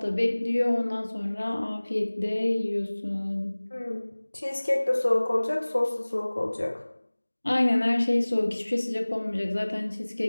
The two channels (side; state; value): both; inverted; correlation -1.00